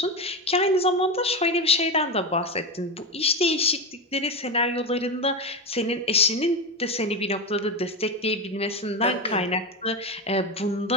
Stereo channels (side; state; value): both; normal; correlation 0.16